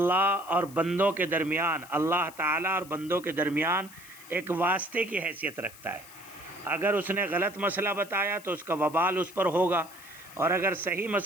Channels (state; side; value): noise; left; hiss, 20 dB below the sound